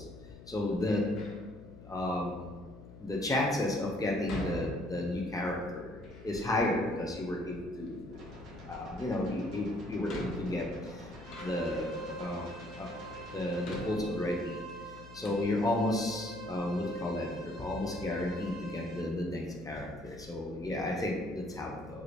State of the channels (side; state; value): left; noise; hum, 16 dB below the sound